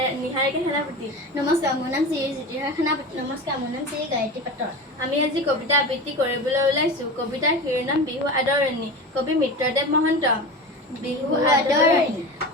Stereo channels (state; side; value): normal; both; correlation 0.28